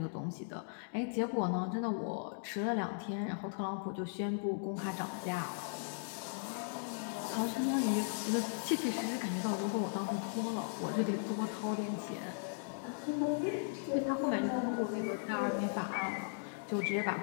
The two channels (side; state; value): right; silent; digital silence